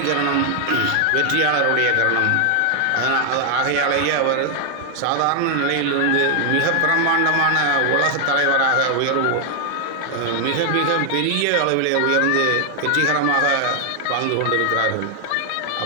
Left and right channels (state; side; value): different; both; correlation 0.00